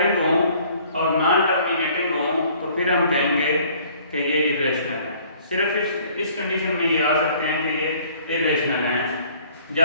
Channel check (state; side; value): inverted; both; correlation -0.56